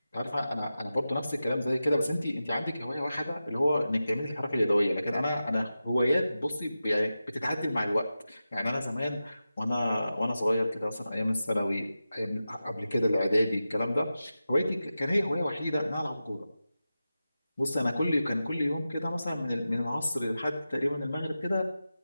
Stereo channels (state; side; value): inverted; both; correlation -0.93